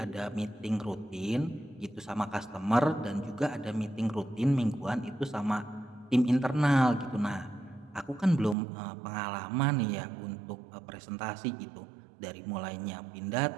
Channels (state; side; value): drops out; left; at 8.6 s